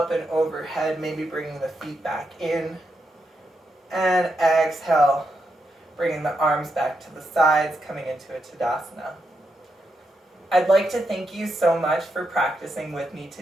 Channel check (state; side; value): normal; both; correlation 0.83